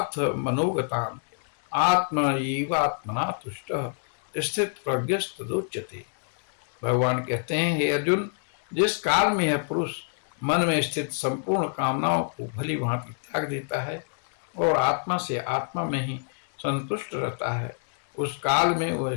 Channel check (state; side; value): silent; right; 60 dB below the other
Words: मनोगतान, आत्मा एवात्मना तुष्टः स्थित प्रज्ञस्तदुच्यते। भगवान कहते हैं, हे अर्जुन, जिस काल में यह पुरुष मन में स्थित संपूर्ण कामनाओं को भली भांति त्याग देता है और आत्मा से आत्मा में ही संतुष्ट रहता है, उस काल में वह